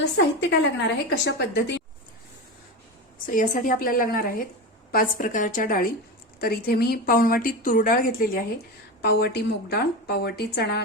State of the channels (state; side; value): normal; both; correlation 0.22